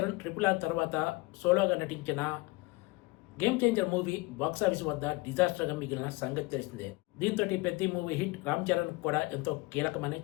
RRR తర్వాత సోలోగా నటించిన గేమ్ చేంజర్ మూవీ బాక్సాఫీస్ వద్ద డిజాస్టర్గా మిగిలిన సంగతి తెలిసిందే. దీంతో పెద్ద మూవీ హిట్ రామ్ చరణ్ కూడా ఎంతో కీలకమని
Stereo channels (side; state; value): right; quieter; 23.9 dB